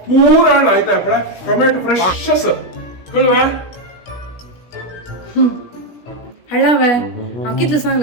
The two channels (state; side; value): late; right; 16 ms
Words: ಪೂರಾ ಆಯ್ತಾ ಅಪ್ಪಳ ಟೊಮೆಟೊ ಫ್ರೆಶಸ್ ಕಳ್ವಾ हळावे हांव कितले